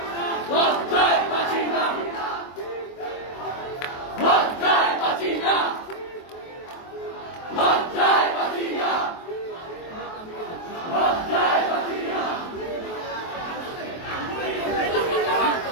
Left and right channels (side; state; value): right; late; 23 ms